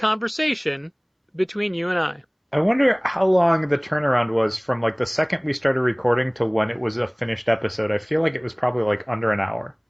between you and I. I wonder how long the turnaround was from like the second we started recording to when it was a finished episode. I feel like it was probably like under an hour.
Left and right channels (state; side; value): identical; both; correlation 1.00